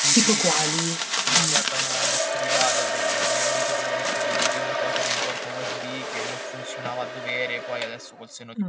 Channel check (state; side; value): identical; both; correlation 1.00